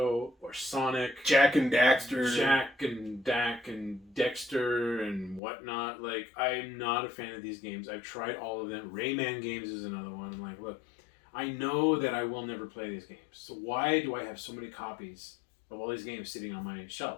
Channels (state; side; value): drops out; right; at 5.4 s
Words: or Sonic. Jack and Daxter. Jack and Dak and Dexter and whatnot. Like, I'm not a fan of these games. I've tried all of them. Rayman games is another one. I'm like, look, I know that I will never play these games. So why do I have so many copies of all these games sitting on my